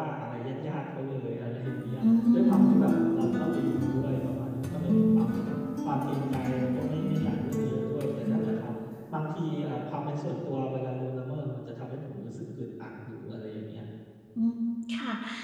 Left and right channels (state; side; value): identical; both; correlation 1.00